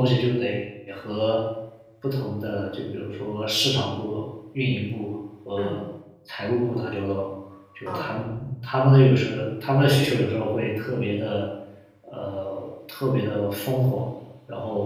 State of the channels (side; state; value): both; identical; correlation 1.00